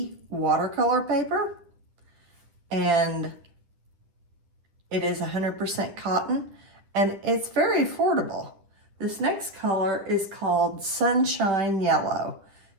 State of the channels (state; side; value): late; left; 10 ms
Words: watercolor paper, and it is 100% cotton, and it's very affordable. This next color is called Sunshine Yellow.